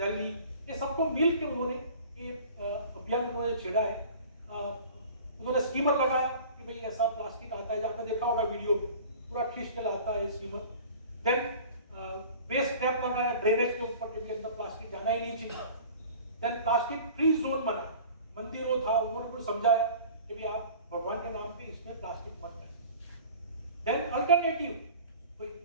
ये सबको मिल के उन्होंने ये अभियान उन्होंने छेड़ा है। उन्होंने स्टीमर लगाया कि भाई ऐसा प्लास्टिक आता है, आपने देखा होगा वीडियो में, पूरा खींच के लाता है स्टीमर। देन वेस्ट ट्रैप लगाया ड्रेनेज के ऊपर कि अंदर प्लास्टिक जाना ही नहीं चाहिए। देन प्लास्टिक फ्री जोन बना, मंदिरों था, उन्होंने कुछ समझाया कि भाई आप भगवान के नाम पे इसमें प्लास्टिक मत करें। देन अल्टरनेटिव, कोई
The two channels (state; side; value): inverted; both; correlation -0.43